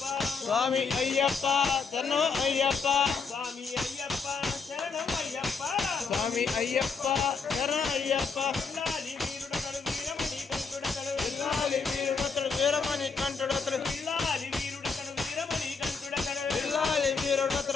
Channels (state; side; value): quieter; right; 5.1 dB